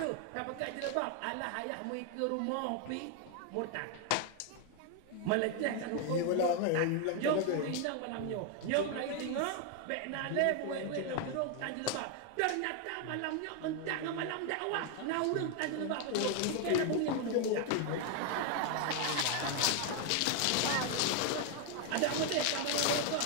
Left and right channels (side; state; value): both; different; correlation 0.01